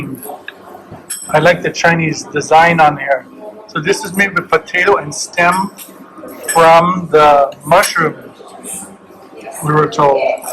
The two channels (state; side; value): identical; both; correlation 1.00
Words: I like the Chinese design on here. So this is made with potato and stem from the mushroom, we were told.